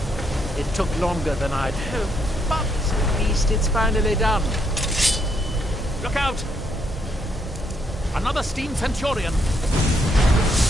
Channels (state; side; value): normal; both; correlation 0.74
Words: It took longer than I'd hoped, but at least it's finally done. Look out! Another steam Centurion!